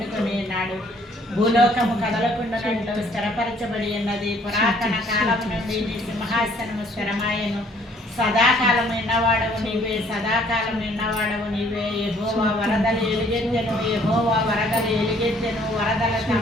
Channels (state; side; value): normal; both; correlation 0.61